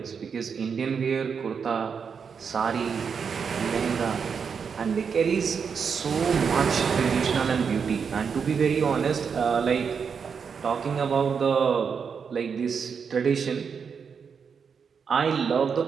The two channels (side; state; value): left; quieter; 6.3 dB